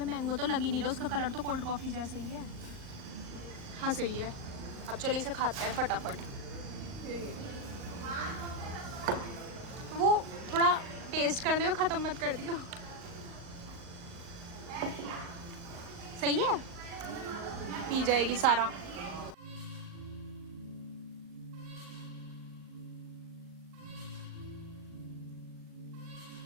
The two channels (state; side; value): late; left; 38 ms